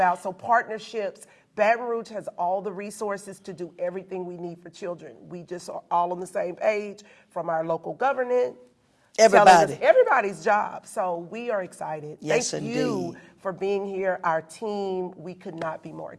So partnerships, Baton Rouge has all the resources to do everything we need for children. We just are all on the same page, from our local government. Everybody. Everybody's job. So we are excited. Yes, Thank you indeed. for being here. Our team, we could not be more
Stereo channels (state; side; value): identical; both; correlation 1.00